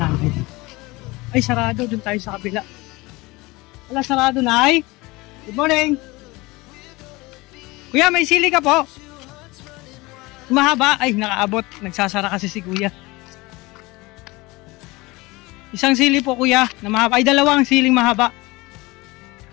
Ay, sarado, dun tayo sa kabila. Wala, sarado na ay. Good morning. Kuya, may sili ka po? Mahaba, ay, nakaabot. Nagsasara kasi si kuya. Isang sili po kuya, na mahaba. Ay, dalawang siling mahaba.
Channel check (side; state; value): right; quieter; 22.5 dB